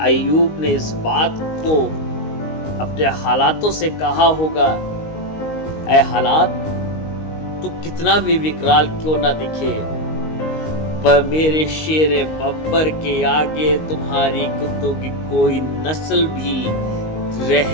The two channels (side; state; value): right; late; 19 ms